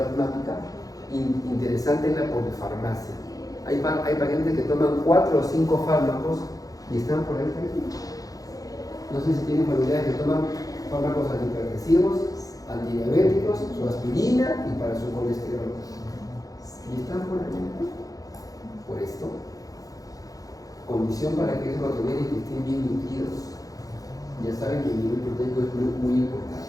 interesante en la polifarmacia. Hay pacientes que toman 4 o 5 fármacos y están por ahí. No sé si tienen familiares que toman fármacos antihipertensivos, antidiabéticos, su aspirina y para su colesterol. Y están por ahí. Por esto, condición para que eso lo toleren y que estén bien nutridos. Ya saben que el nivel proteico es muy importante,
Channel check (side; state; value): right; late; 0.17 ms